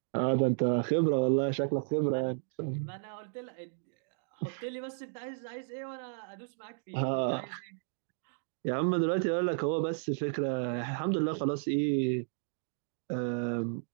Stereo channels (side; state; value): left; silent; digital silence